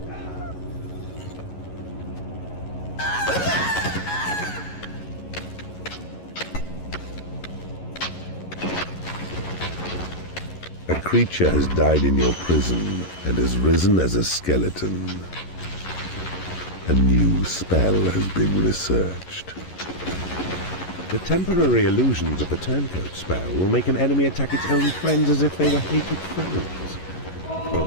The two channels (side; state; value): right; late; 11 ms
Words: A creature has died in your prison and has risen as a skeleton. A new spell has been researched. The temporary illusions of the turncoat spell will make an enemy attack its own friends as if they were hated foes.